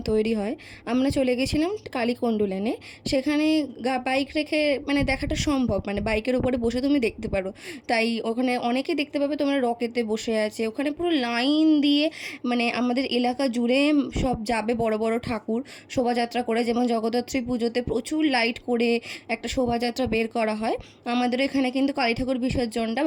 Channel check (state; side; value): identical; both; correlation 1.00